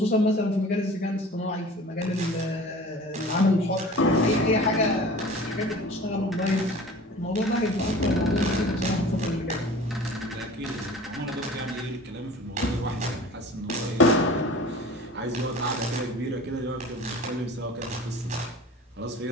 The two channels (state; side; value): normal; both; correlation 0.42